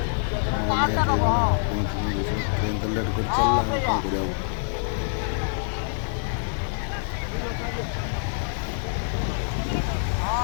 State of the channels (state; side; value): silent; right; digital silence